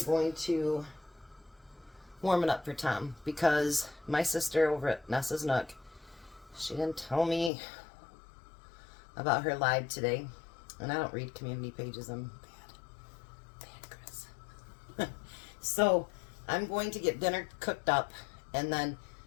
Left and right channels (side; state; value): right; drops out; at 7.5 s